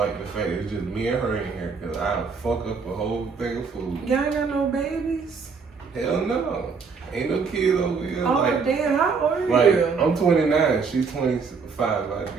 the fact it's just me and her in here, because I'll fuck up a whole thing of food. Y'all ain't got no babies? Hell no. Ain't no kid over here. Oh, like, damn, how old are like, you? I'm 29. She's 25. I'd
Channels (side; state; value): left; quieter; 5.2 dB